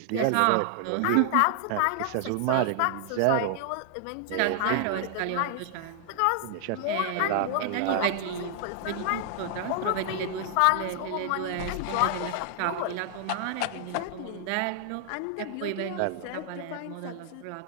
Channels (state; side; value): different; both; correlation 0.00